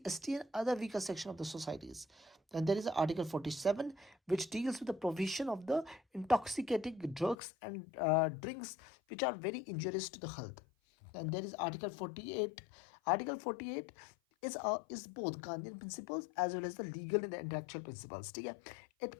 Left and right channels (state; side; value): drops out; right; at 7.4 s